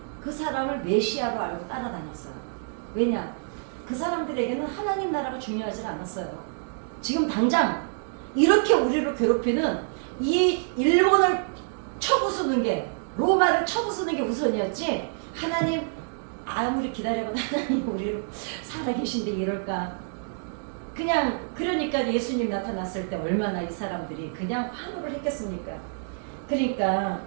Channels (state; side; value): silent; left; digital silence